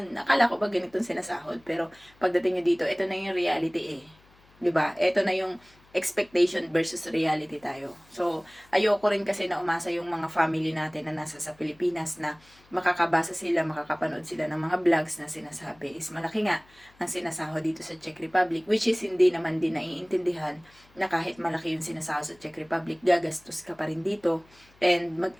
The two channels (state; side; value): noise; left; hum, 29 dB below the sound